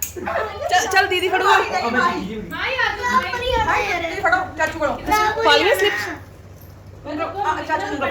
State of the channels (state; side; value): identical; both; correlation 1.00